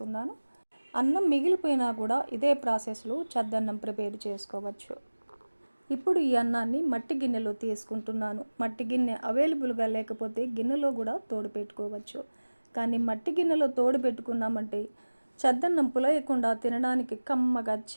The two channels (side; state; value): both; inverted; correlation -1.00